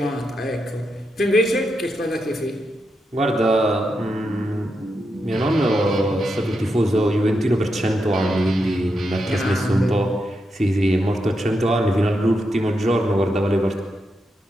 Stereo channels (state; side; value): normal; both; correlation 0.85